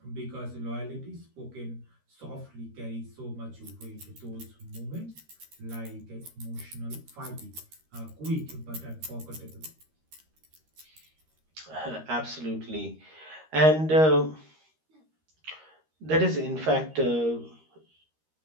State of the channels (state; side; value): late; left; 13 ms